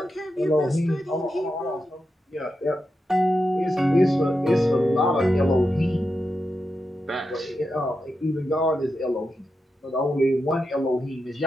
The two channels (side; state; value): both; normal; correlation 0.88